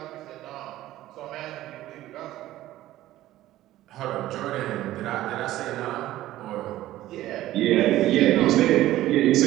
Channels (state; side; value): quieter; left; 14.9 dB